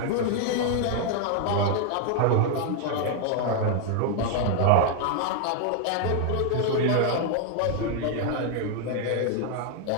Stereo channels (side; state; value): both; different; correlation 0.00